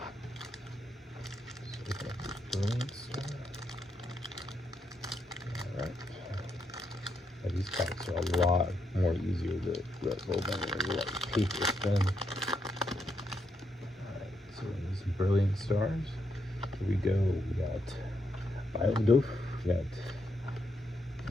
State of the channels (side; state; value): both; normal; correlation 0.80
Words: these cards are a lot more easier to let go than like paper thin. Alright, so these brilliant stars. Here we go. We got Biodoof, we got